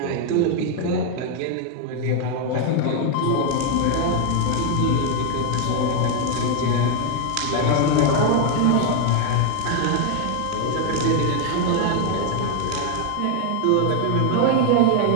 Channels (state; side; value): different; both; correlation 0.01